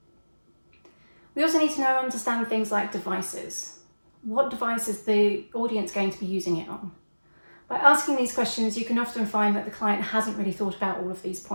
We also need to understand things like devices. What device is the audience going to be using it on? By asking these questions, you can often find that the client hasn't really thought about all of these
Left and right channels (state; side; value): inverted; both; correlation -1.00